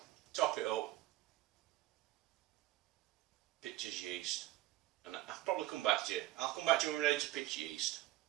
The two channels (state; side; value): quieter; left; 16.6 dB